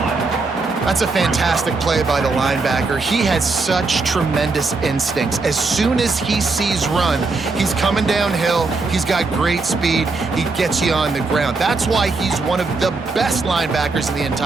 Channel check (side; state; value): left; quieter; 3.9 dB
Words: That's a fantastic play by the linebacker. He has such tremendous instincts. As soon as he sees run, he's coming downhill. He's got great speed. He gets you on the ground. That's why he's one of the best linebackers in the